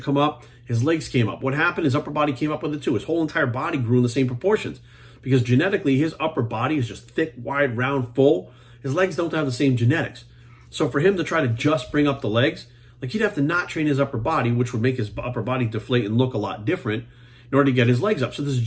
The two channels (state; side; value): identical; both; correlation 1.00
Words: come up. His legs came up. What happened? His upper body came up with it too. His whole entire body grew in the same proportions because genetically his upper body is just thick, wide, round, full. His legs don't have the same genetics. So for him to try to just bring up the legs, like, he'd have to not train his upper body, which would make his upper body deflate and look a lot different in order to get his legs up. So there's a